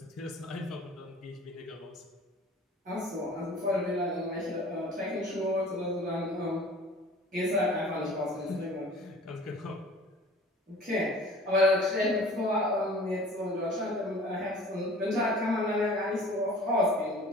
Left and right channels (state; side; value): normal; both; correlation 0.45